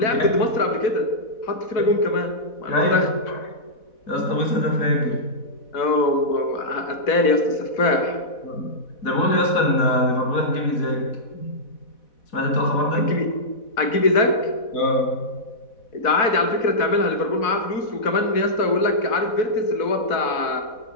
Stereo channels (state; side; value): late; right; 4.1 ms